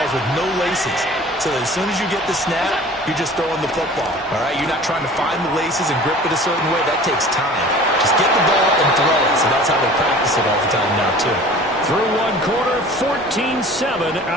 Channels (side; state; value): both; normal; correlation 0.44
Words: with no laces. So that as soon as you get the snap, you're just throwing the football. All right? You're not trying to find the laces and grip it a certain way. That takes time. Just get the ball and throw it. So that's how they practice it all the time now, too. Through one quarter, 14-7